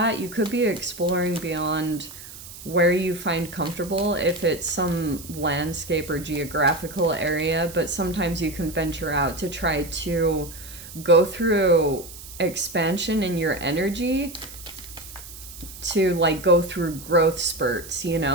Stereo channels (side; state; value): right; noise; hiss, 15 dB below the sound